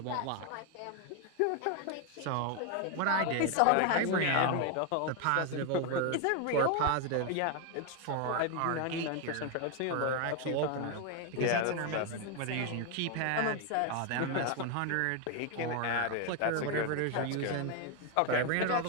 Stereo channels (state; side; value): different; both; correlation 0.01